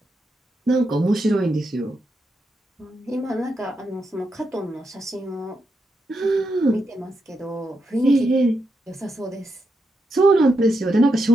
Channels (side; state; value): both; normal; correlation 0.83